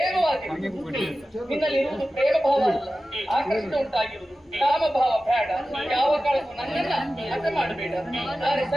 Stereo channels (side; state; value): both; normal; correlation 0.95